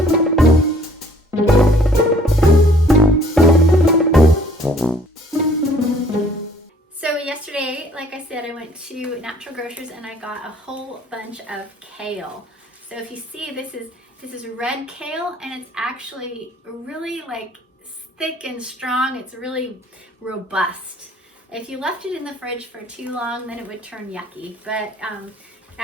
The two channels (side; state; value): both; normal; correlation 0.58